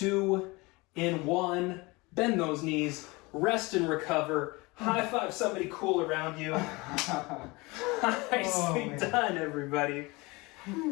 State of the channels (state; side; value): quieter; right; 24.5 dB